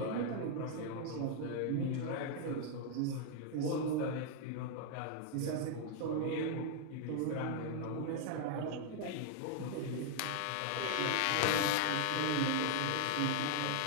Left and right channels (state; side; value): different; both; correlation 0.00